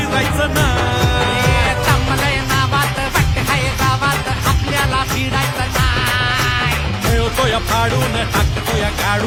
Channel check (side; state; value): both; identical; correlation 1.00